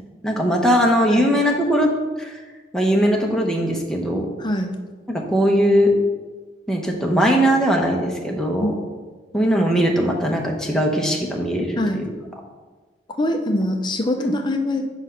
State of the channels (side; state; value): both; normal; correlation 0.71